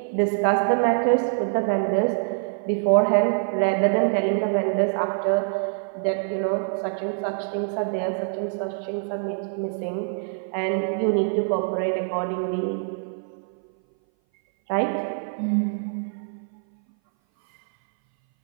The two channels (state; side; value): silent; left; 59 dB below the other